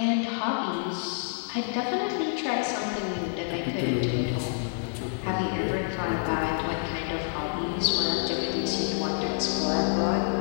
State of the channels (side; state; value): right; silent; 59 dB below the other